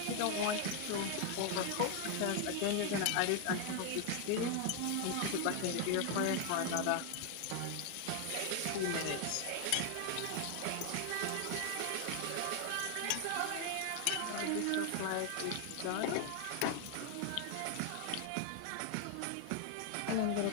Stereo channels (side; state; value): both; different; correlation 0.00